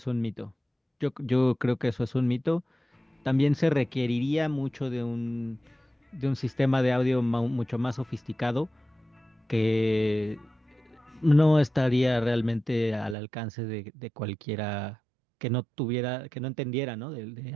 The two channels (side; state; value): left; drops out; at 13.2 s